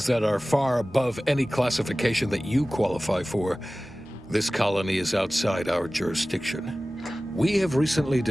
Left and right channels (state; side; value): normal; both; correlation 0.97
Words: that are far above any classification that you qualify for, this colony is outside our jurisdiction. We have recently